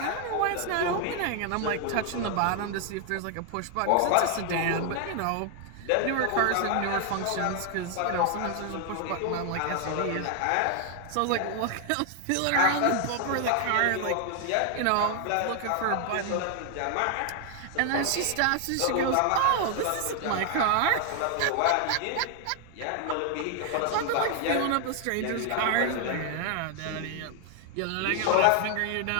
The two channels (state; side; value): different; both; correlation 0.00